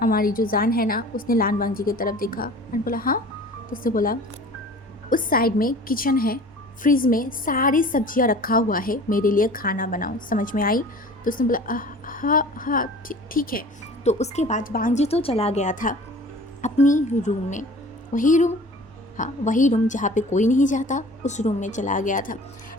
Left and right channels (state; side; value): normal; both; correlation 0.44